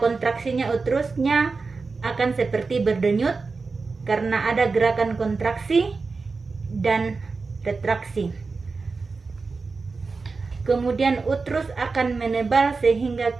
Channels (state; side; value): quieter; left; 4.3 dB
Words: kontraksinya uterusnya akan seperti berdenyut karena ada gerakan kontraksi dan retraksi. Kemudian uterus akan menebal sehingga